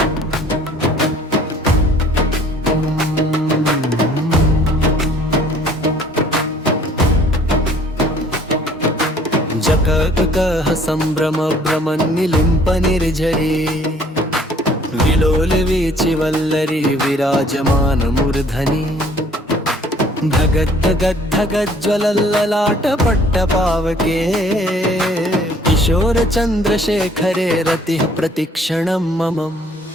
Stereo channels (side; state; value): both; normal; correlation 0.57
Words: जककः सम्भ्रम भ्रमन्निलिम्प निर्झरे विलोलवीचि वल्लरी विराजमानमूर्धनि धगद्धगद्धगज्ज्वलल्ललाटपट्टपावके किशोरचन्द्रशेखरे रतिः प्रतिक्षणं मम